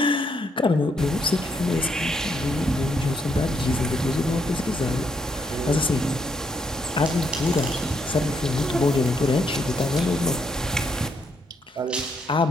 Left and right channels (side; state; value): both; normal; correlation 0.75